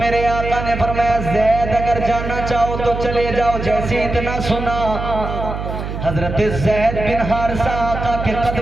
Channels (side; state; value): right; noise; hum, 6 dB below the sound